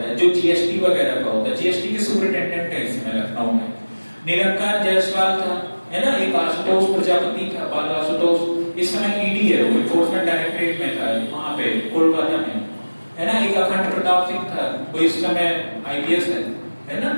है, जो GST वगैरह का होता है। GST के सुपरिटेंडेंट है इसमें लखनऊ में। निरंकार जायसवाल था, है ना, एक आशुतोष प्रजापति था, बाल आशुतोष, इस समय ED है, वो एनफोर्समेंट डायरेक्टरेट में था वहां पे कोलकाता में, है ना। एक अखंड प्रताप सिंह था, वो इस समय IPS है ना,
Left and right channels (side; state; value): both; inverted; correlation -1.00